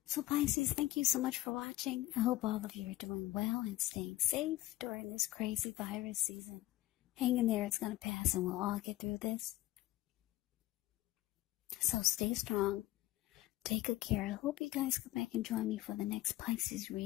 So Pisces, thank you so much for watching. I hope all of you are doing well and staying safe during this crazy virus season. Hang in there, it's going to pass and we'll all get through this. So stay strong. Take good care. I hope you guys come back and join me for the next Pisces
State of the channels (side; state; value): right; quieter; 17.0 dB